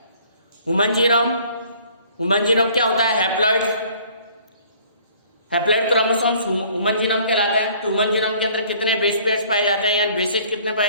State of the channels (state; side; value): inverted; both; correlation -0.55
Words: ह्यूमन जीनोम क्या होता है? हैप्लॉइड क्रोमोसोम्स ह्यूमन जीनोम कहलाता है। तो ह्यूमन जीनोम के अंदर कितने बेस पेयर्स पाए जाते हैं, यानी बेसेज कितने